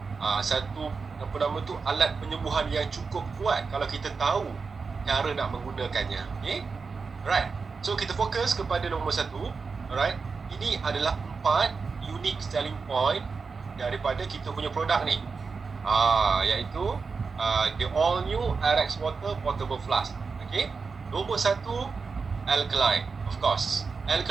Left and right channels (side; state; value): left; quieter; 4.9 dB